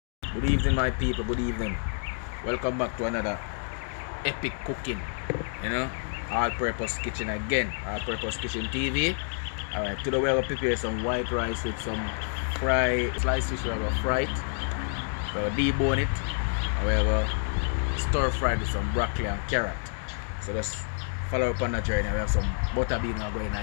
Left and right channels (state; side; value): silent; right; 59 dB below the other